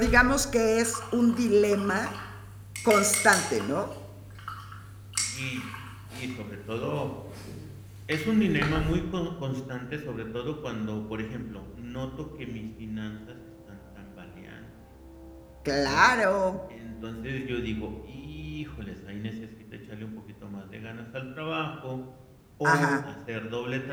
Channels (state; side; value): identical; both; correlation 1.00